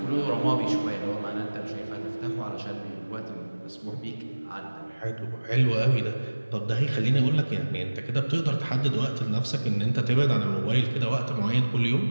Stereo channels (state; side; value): inverted; both; correlation -1.00